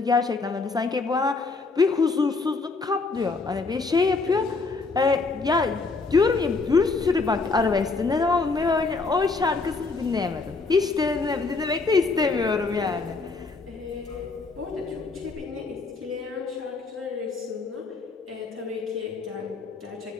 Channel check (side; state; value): right; quieter; 4.0 dB